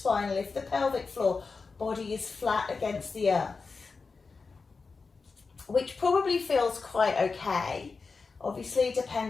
lift the pelvic floor, body is flat against the earth, which probably feels quite okay. Obviously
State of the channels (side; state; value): right; quieter; 4.5 dB